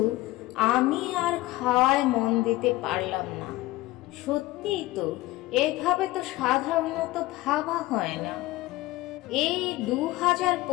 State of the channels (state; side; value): quieter; right; 18.3 dB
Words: আমি আর খাওয়ায় মন দিতে পারলাম না। সত্যিই তো, এভাবে তো সাধারণত ভাবা হয় না। এই